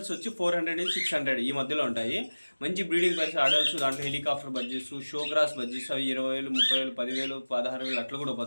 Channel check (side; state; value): both; inverted; correlation -1.00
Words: వచ్చి 400 నుంచి 600 ఈ మధ్యలో ఉంటాయి. మంచి బ్రీడింగ్ ప్రైస్ అడల్ట్స్, దాంట్లో హెలికాప్టర్ బడ్జెస్, షో క్రాస్ బడ్జెస్ అవి 20,000, 30,000, 10,000, 16,000 అట్లా కూడా